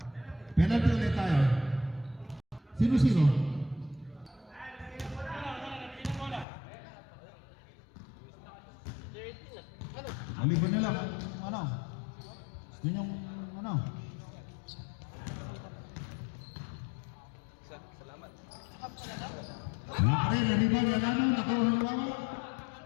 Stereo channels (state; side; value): drops out; right; at 6.5 s